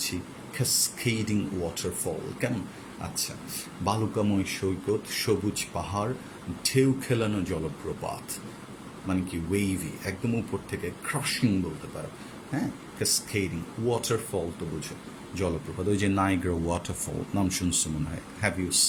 ক্যাসকেডিং ওয়াটারফল। কেমন? আচ্ছা, বালুকাময় সৈকত, সবুজ পাহাড়, ঢেউ খেলানো জলপ্রপাত, মানে কি ওয়েভি, একদম উপর থেকে ক্রাশিং বলতে পারো। হ্যাঁ, ক্যাসকেডিং ওয়াটারফল তো বুঝো, জলপ্রপাত। ওই যে নাইগ্রা ওয়াটারফল নাম শুনছো মনে হয়, হ্যাভ ইউ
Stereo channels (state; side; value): identical; both; correlation 1.00